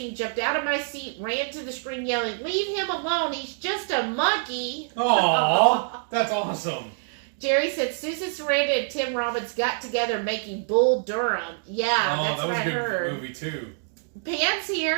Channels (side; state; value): left; silent; digital silence